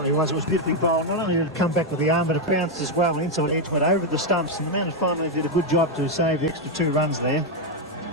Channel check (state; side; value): normal; both; correlation 0.03